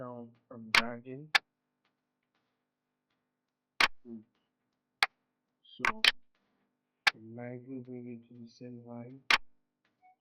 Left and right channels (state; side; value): identical; both; correlation 1.00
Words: and dragging. So lightly bring it to the same line.